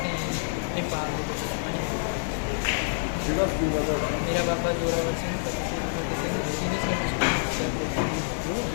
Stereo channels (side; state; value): right; silent; digital silence